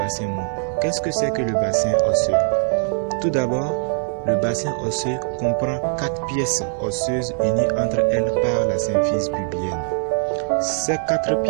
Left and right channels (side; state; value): left; silent; 63 dB below the other